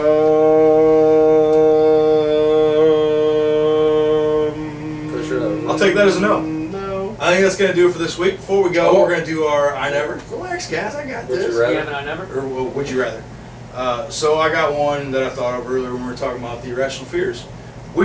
For sure. I'll take that as a no. No. I think that's going to do it for this week. Before we go, Oh. we're going to do our I Never. Relax, guys, I got Would this. you rather? Yeah, but I never. Or would you rather? So I got one that I thought of earlier when we were talking about the irrational fears.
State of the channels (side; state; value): both; identical; correlation 1.00